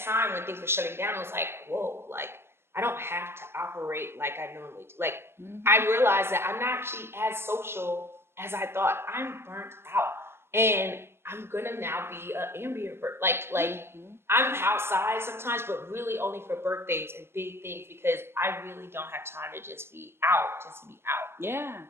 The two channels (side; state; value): left; late; 0.12 ms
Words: when things were shutting down, it was like, whoa, like, I don't have to operate like I normally do. Like, I realized that I'm not actually as social as I thought. I'm burnt out. And I'm gonna now be an ambient like I'm outside sometimes, but really only for birthdays and big things, because I really don't have time to just be out, Yeah.